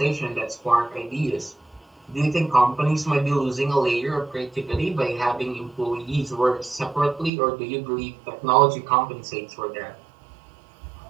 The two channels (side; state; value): left; drops out; at 7.3 s